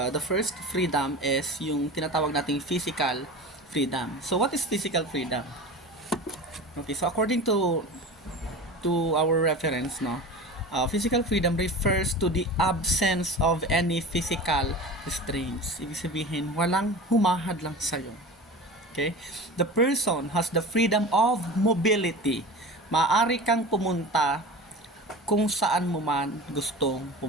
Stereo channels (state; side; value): normal; both; correlation 0.33